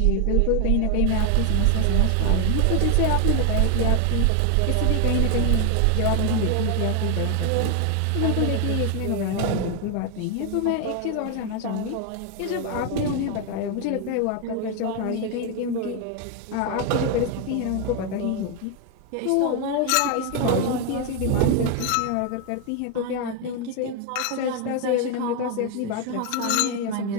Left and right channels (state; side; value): different; both; correlation 0.01